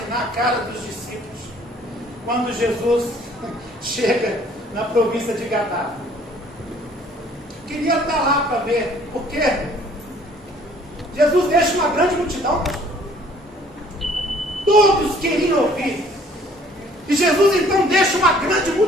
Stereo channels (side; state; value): both; normal; correlation 0.57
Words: a cara dos discípulos quando Jesus chega na província de Gadara. Queria estar lá para ver, porque Jesus deixa uma grande multidão. Todos queriam ouvir. E Jesus então deixa uma grande